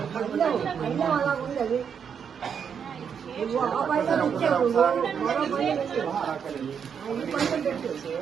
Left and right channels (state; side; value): quieter; left; 7.3 dB